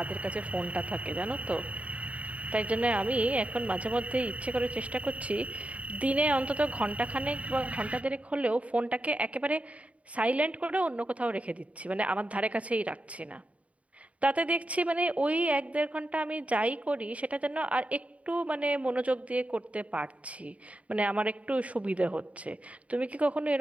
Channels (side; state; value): left; late; 0.066 ms